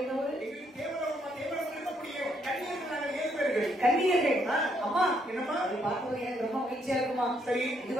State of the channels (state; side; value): normal; both; correlation 0.73